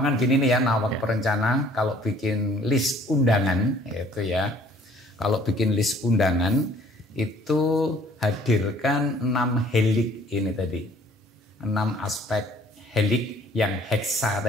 gini nih ya, nawak perencana kalau bikin list undangan, itu ya. Kalau bikin list undangan, itu hadirkan 6 helik ini tadi. 6 aspek helik yang heksa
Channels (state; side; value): normal; both; correlation 0.56